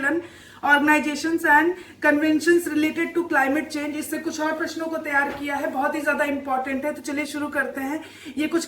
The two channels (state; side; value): identical; both; correlation 1.00